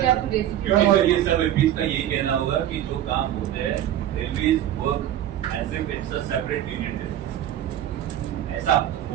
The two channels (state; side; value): quieter; left; 11.7 dB